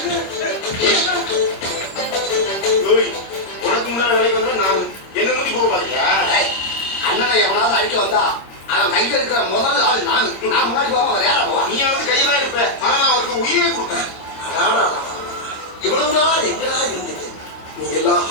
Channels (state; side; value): late; right; 26 ms